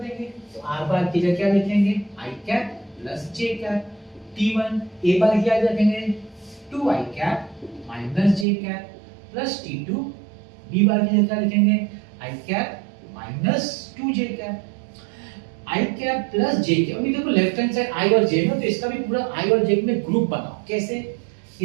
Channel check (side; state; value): left; drops out; at 8.5 s